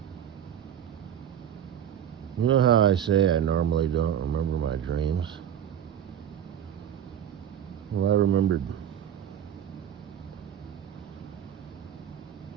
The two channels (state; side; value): quieter; left; 9.8 dB